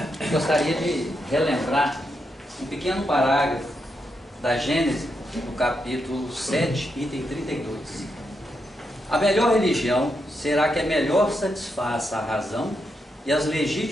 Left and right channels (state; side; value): normal; both; correlation 0.83